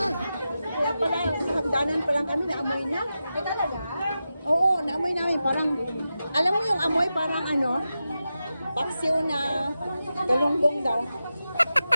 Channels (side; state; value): both; inverted; correlation -0.91